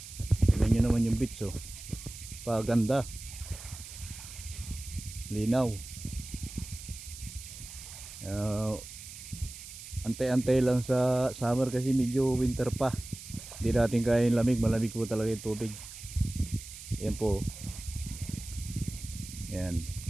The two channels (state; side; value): noise; right; hiss, 13 dB below the sound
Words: Tignan nyo naman yung beach oh, paganda, linaw. Antay-antay lang sa summer kasi medyo winter pa, hindi natin kaya yung lamig, malamig po talaga yung tubig. Yan po, yan,